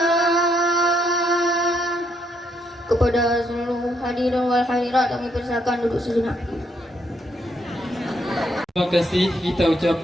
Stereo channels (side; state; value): both; normal; correlation 0.74